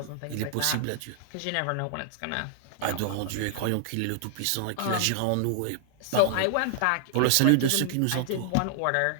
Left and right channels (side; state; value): both; different; correlation -0.01